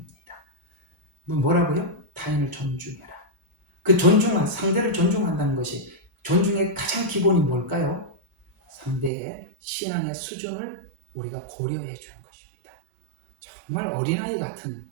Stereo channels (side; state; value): left; drops out; at 9.1 s